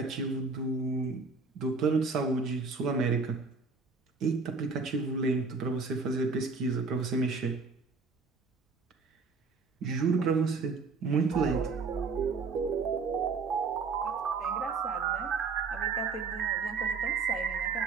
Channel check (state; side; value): quieter; left; 4.5 dB